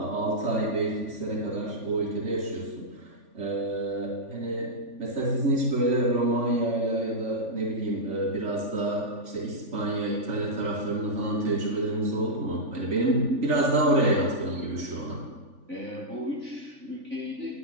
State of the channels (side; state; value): left; late; 3.5 ms